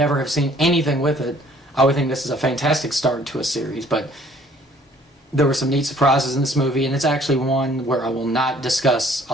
have seen anything with it, I would think this is a fantastic start to a series. But there were some neat surprises in this movie, and it's actually one where I will not discuss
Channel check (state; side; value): normal; both; correlation 0.58